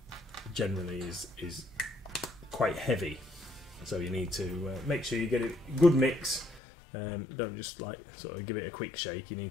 Generally is quite heavy, so you need to make sure you get a good mix. Don't just like sort of give it a quick shake. You need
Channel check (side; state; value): right; drops out; at 6.6 s